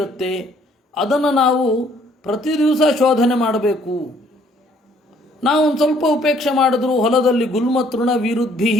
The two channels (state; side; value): normal; both; correlation 0.63